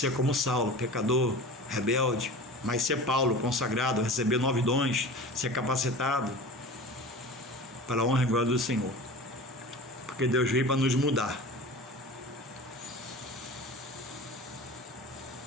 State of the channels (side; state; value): both; normal; correlation 0.35